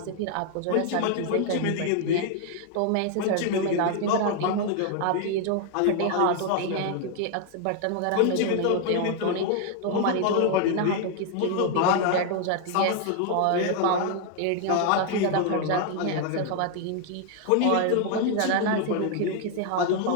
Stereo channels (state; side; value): different; both; correlation 0.00